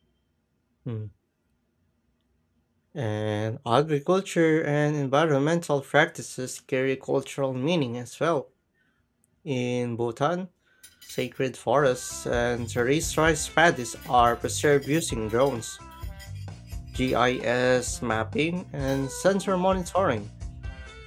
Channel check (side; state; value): both; identical; correlation 1.00